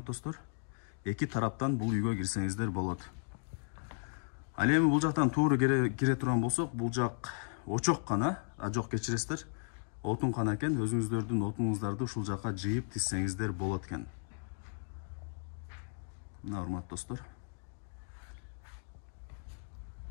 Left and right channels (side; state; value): right; silent; 54 dB below the other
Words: достор. Эки тараптан бул үйгө кирсеңиздер болот. Ал эми бул жактан туура кире турган болсок, бул жак очок гана, жок кечиресиздер. Отун гана экен, өзүңүздөрдүн отуңуздарды ушул жакка жыйып тизсеңиздер болот экен. Мына урматтуу достор.